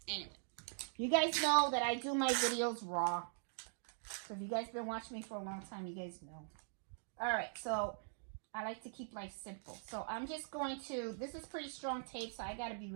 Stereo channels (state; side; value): silent; left; digital silence